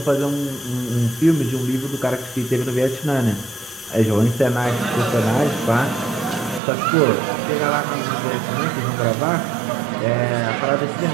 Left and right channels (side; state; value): left; drops out; at 6.6 s